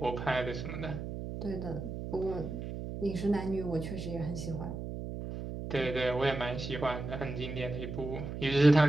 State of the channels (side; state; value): right; noise; hum, 6 dB below the sound